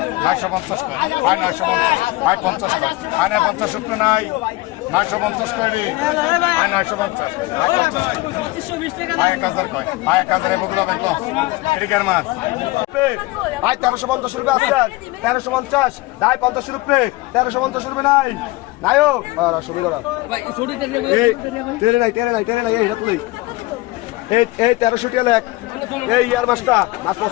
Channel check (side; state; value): right; quieter; 20.5 dB